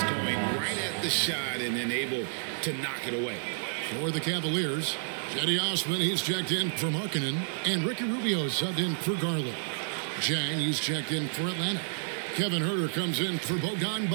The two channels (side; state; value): left; silent; digital silence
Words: going right at the shot and then able to knock it away. For the Cavaliers, Cedi Osman, he's checked in for Markkanen, and Ricky Rubio subbed in for Garland. Jang, he's checked in for Atlanta. Kevin Huerter comes in for